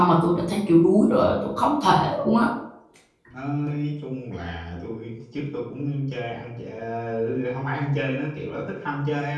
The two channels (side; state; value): both; identical; correlation 1.00